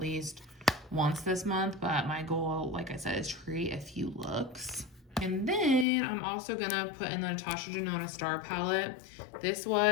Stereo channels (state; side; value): drops out; right; at 5.9 s